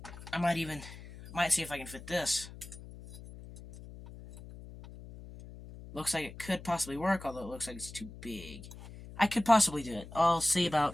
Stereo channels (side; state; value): left; noise; hum, 15 dB below the sound